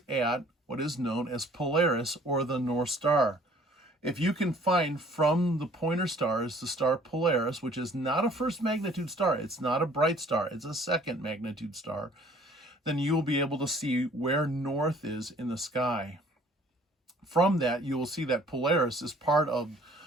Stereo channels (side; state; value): both; normal; correlation 0.55